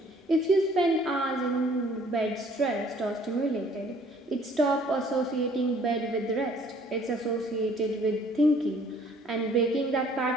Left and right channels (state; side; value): normal; both; correlation 0.58